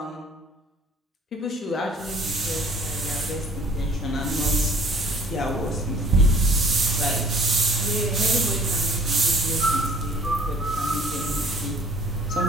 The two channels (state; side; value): normal; both; correlation 0.53